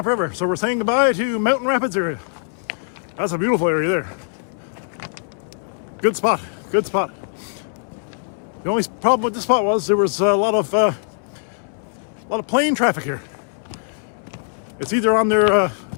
so we're saying goodbye to Mountain Rapids area. That's a beautiful area there. Good spot. Good spot. The only problem with this spot was there was a lot of plane traffic here. It's either on their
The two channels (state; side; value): silent; right; 64 dB below the other